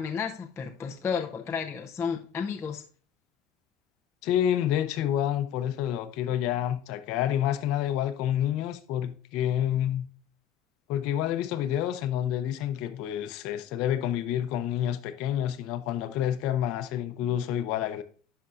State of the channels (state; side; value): quieter; right; 10.0 dB